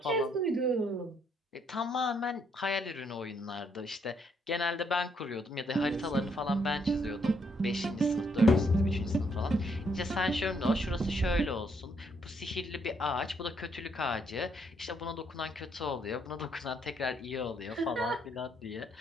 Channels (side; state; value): both; normal; correlation 0.72